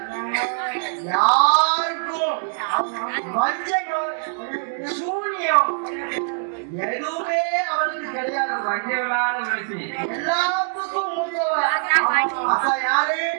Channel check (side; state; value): left; silent; 63 dB below the other